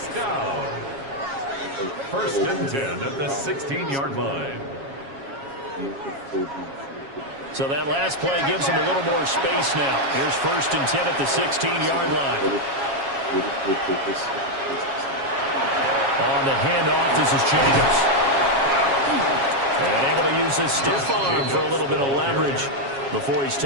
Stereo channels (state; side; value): late; left; 7.3 ms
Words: down. 1st and 10 at the 16-yard line. So that last play gives them a little more space now. Here's 1st and 10 at the 16-yard line. On the handoff, this is Jacobs. And able to use his stiff arm for a little bit of leverage before he's